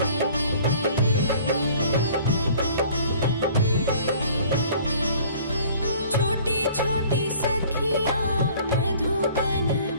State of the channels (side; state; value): both; inverted; correlation -0.52